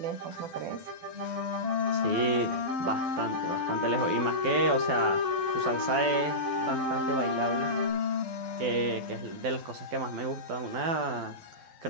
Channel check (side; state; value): left; late; 12 ms